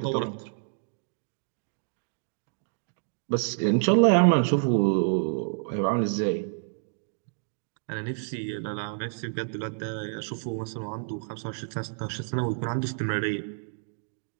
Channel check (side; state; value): left; silent; digital silence